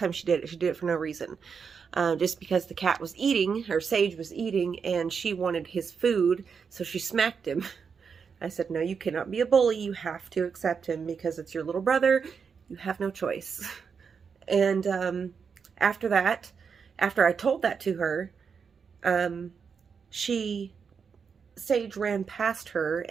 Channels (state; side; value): quieter; left; 6.1 dB